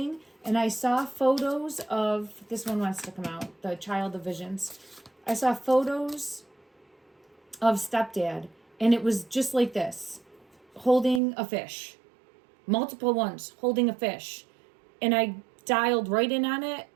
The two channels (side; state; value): left; drops out; at 11.2 s